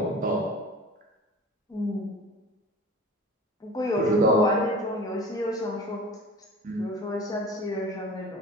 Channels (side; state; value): both; normal; correlation 0.39